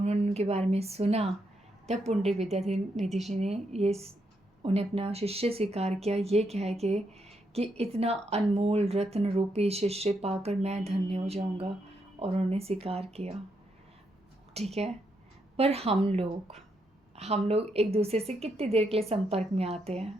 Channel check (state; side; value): normal; both; correlation 0.79